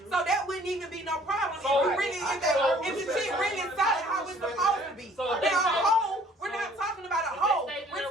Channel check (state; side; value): normal; both; correlation 0.56